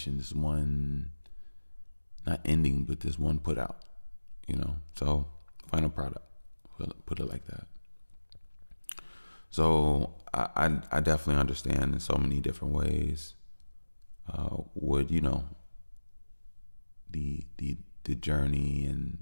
This one not ending, but this one put out. So final product. Put it like that. So I definitely understand in so many different ways what the journey and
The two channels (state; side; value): inverted; both; correlation -1.00